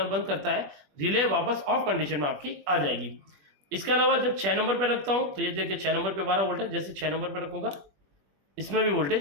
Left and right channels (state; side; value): late; left; 21 ms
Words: बंद करता है, रिले वापस ऑफ कंडीशन में आपकी आ जाएगी। इसके अलावा जब 6 नंबर पे रखता हूँ तो ये देखिए 6 नंबर पे 12 वोल्ट है, जैसे 6 नंबर पे रखूंगा इसमें भी